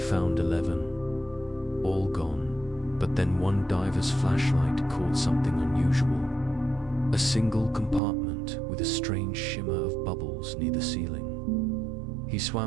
11. All gone, but then one diver's flashlight caught something unusual. A single compartment with a strange shimmer of bubbles near the ceiling. He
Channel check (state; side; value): drops out; left; at 8.0 s